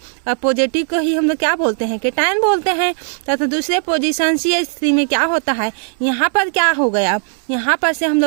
और पॉजिटिव को ही हम लोग क्या बोलते हैं, कैटायन बोलते हैं। तो दूसरे पोजीशन CH3 में क्या होता है, यहाँ पर क्या हो गया, यहाँ पर से हम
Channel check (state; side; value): silent; left; 68 dB below the other